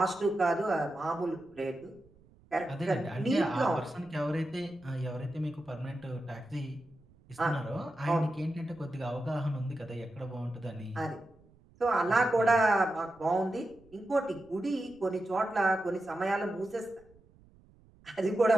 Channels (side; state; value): right; noise; rumble, 28 dB below the sound